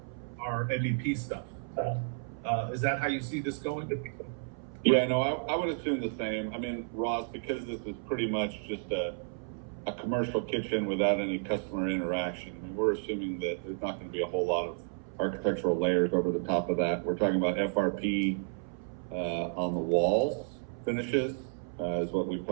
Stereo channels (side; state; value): left; silent; 56 dB below the other